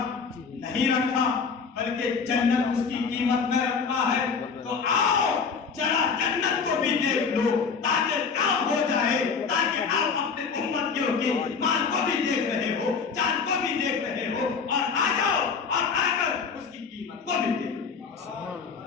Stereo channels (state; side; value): quieter; right; 5.5 dB